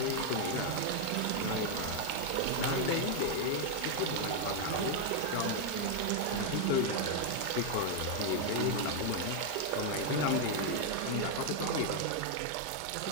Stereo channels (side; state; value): both; different; correlation 0.01